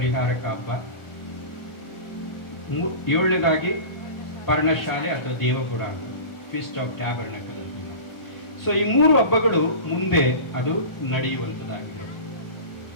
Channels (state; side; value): late; right; 1.1 ms